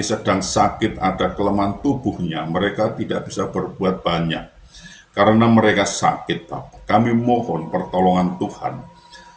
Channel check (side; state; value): both; identical; correlation 1.00